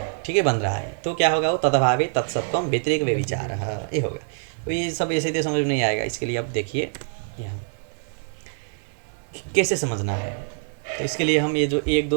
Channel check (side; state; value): left; silent; 62 dB below the other